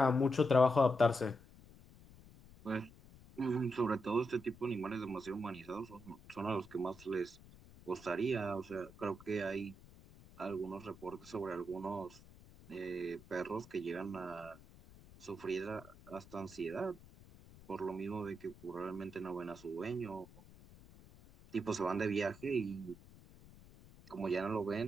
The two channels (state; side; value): noise; left; rumble, 21 dB below the sound